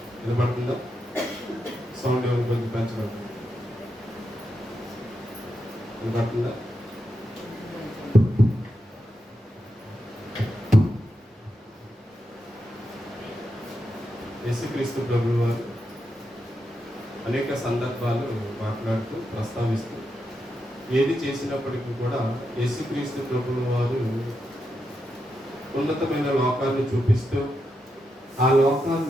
వినపడుతుందా? సౌండ్ ఎవరు కొంచెం పెంచబడుతుంది. వినపడుతుందా? యేసుక్రీస్తు ప్రభువు వారు అనేక సందర్భాలు మాట్లాడుతూ ప్రస్తావిస్తూ ఏది చేసినప్పటికీ కూడా యేసుక్రీస్తు ప్రభువు వారు ఉన్నతమైన లోకాన్ని చూపిస్తూ ఆ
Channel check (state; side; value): normal; both; correlation 0.86